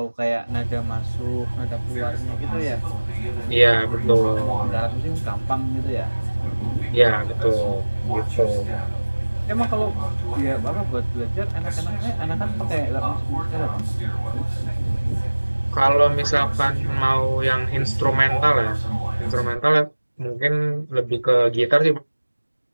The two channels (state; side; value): inverted; both; correlation -1.00